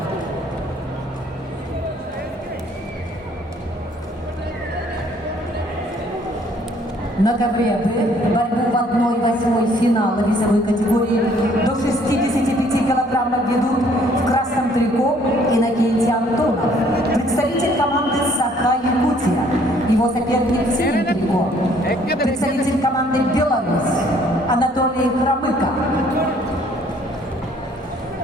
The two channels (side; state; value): both; normal; correlation 0.61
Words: На ковре Б борьбу в 1/8 финала весовой категории до 65 килограммов ведут в красном трико Иннокентий Антонов, представитель команды Саха-Якутия. Его соперник в синем трико, представитель команды Беларусь Анатолий Хромыко.